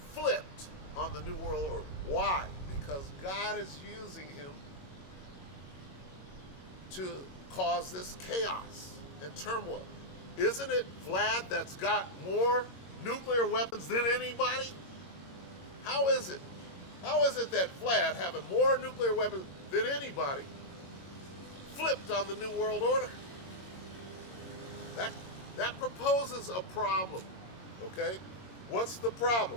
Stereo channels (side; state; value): right; late; 22 ms